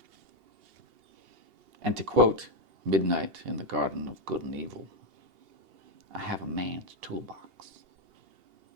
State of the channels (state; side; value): late; left; 2.8 ms